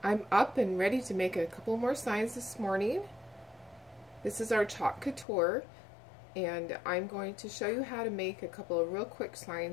I'm up and ready to make a couple more signs this morning. This is our chalk couture, and I'm going to show you how to make a couple of real quick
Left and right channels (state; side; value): drops out; right; at 5.2 s